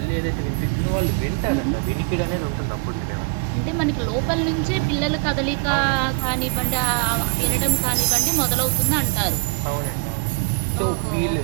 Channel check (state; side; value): quieter; left; 36.7 dB